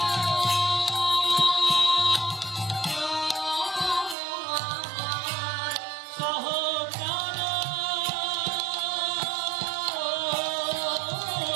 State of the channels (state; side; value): drops out; left; at 4.2 s